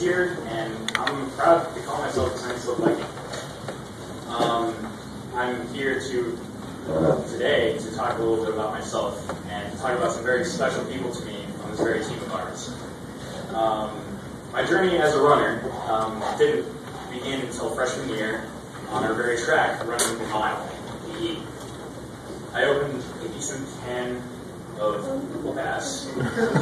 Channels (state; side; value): identical; both; correlation 1.00